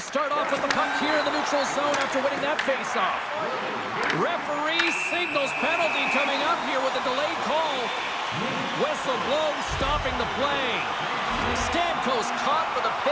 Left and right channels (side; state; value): both; identical; correlation 1.00